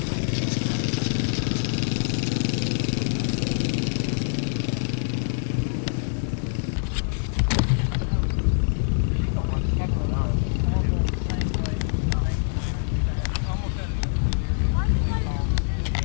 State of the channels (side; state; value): right; silent; 62 dB below the other